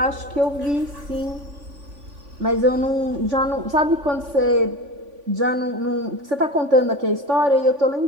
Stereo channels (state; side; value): late; left; 3.5 ms